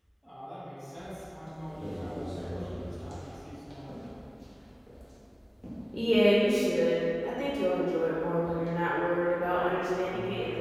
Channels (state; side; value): identical; both; correlation 1.00